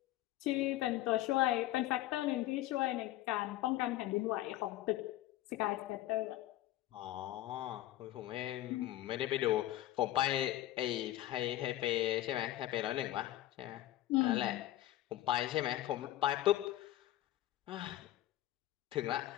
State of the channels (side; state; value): right; quieter; 14.7 dB